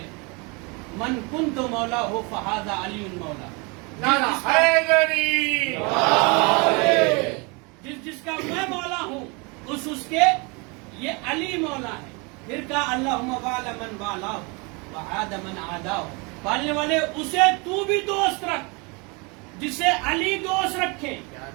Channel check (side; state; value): left; quieter; 29.8 dB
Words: من کنت مولا ہو فہذا علی مولا. جس کا میں مولا ہوں اس کے یہ علی مولا ہے. پھر کہا اللہم والا من والا وعاد من عادا, پالنے والے اسے تو بھی دوست رکھ جسے علی دوست رکھے,